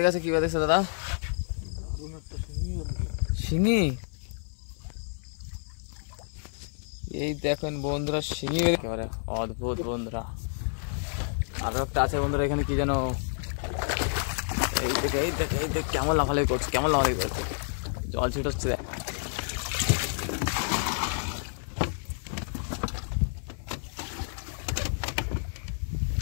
গেছে কি বাদেছে দাদা? শিঙি। এই দেখেন বন্ধুরা শিঙি একেবারে অদ্ভুত বন্ধুরা। আরো একটা আছে বন্ধুরা এখানে কি যেন, এই দেখে এই দেখে এই দেখ কেমন লাফালাফি করছে, কেমন লাফালাফি করছে, জল ছিটচ্ছে।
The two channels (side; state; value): right; silent; 58 dB below the other